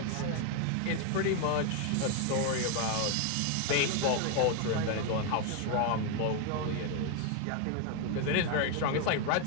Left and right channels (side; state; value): both; different; correlation 0.01